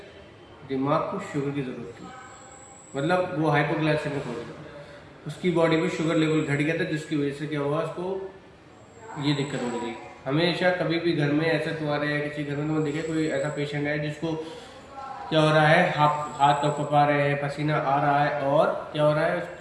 दिमाग को शुगर की ज़रूरत थी, मतलब वो हाइपोग्लाइसेमिक हो गया, उसकी बॉडी में शुगर लेवल घट गया था, जिसकी वजह से क्या हुआ, उसको ये दिक्कत हो रही थी। हमेशा कभी भी घर में ऐसा तुम्हारे या किसी घर में तुम देखे कोई ऐसा पेशेंट है जिसको क्या हो रहा है, हाथ कँपा रहे हैं, पसीना आ रहा है और क्या हो रहा है,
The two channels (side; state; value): both; identical; correlation 1.00